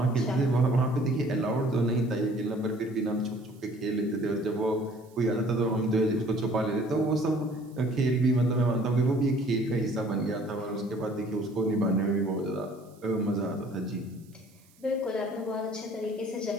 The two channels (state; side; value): noise; right; hiss, 30 dB below the sound